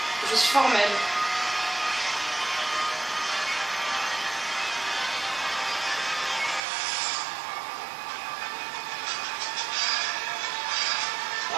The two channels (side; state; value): left; drops out; at 6.6 s